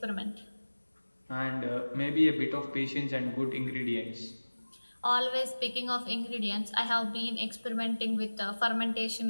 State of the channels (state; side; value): inverted; both; correlation -1.00